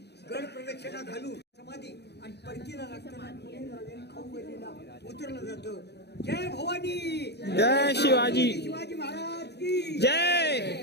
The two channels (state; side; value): late; right; 0.49 ms